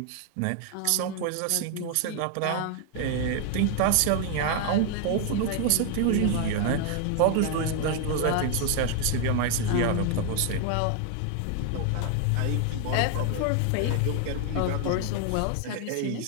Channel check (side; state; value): both; different; correlation 0.00